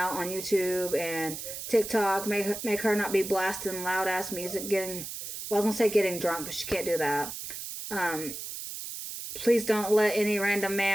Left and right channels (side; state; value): right; noise; hiss, 8 dB below the sound